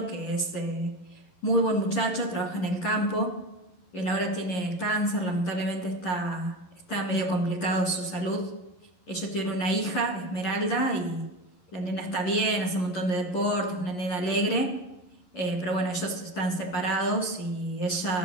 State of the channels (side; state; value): right; late; 11 ms